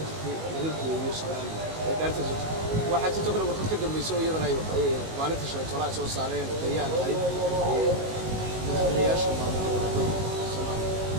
jirtay laga gooyo Soomaaliya ee daarta waxa jirto kale warqad ka dambayso iyadana ay maalinta shalay toona soo saareen bayaan ahayd madaxweynayaasha maamulka Soomaaliya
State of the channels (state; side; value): late; left; 19 ms